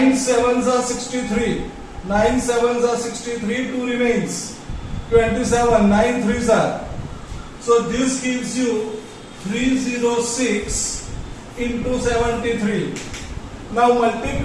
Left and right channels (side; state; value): both; identical; correlation 1.00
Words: sevens are 63. 9 sevens are 63. 2 remains. 27. 9 threes are. So this gives you 306 into 73. Now